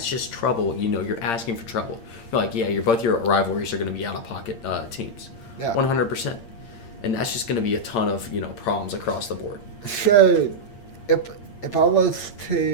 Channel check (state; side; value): late; right; 8.7 ms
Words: just trouble. You know, you're asking for trouble. You're like, yeah, both your rivalries are going to be out of pocket teams, Yeah. 100%, and that's just going to be a ton of problems across the board. So, if I was